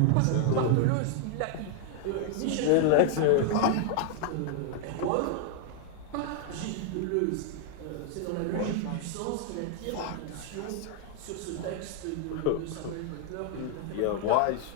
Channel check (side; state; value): both; different; correlation 0.00